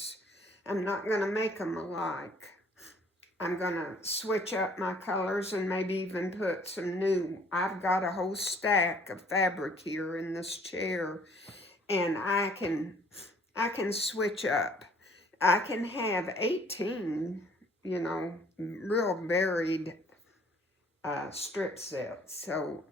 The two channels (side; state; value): both; normal; correlation 0.58